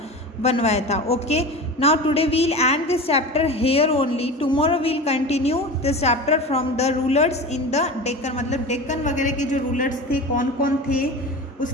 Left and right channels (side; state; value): both; normal; correlation 0.31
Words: बनवाया था। Okay, now today we'll end this chapter here only, tomorrow we'll continue this chapter from the rulers in the Deccan. मतलब डेक्कन वगैरह के जो रूलर्स थे कौन कौन थे